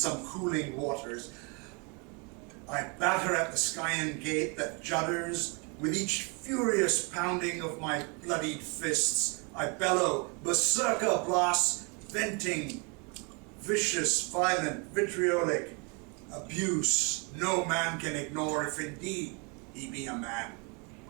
cooling waters. I batter at the Skyan gate that judders with each furious pounding of my bloodied fists. I bellow, berserker blasts, venting, vicious, violent, vitriolic abuse no man can ignore if indeed he be a man.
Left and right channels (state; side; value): quieter; left; 33.1 dB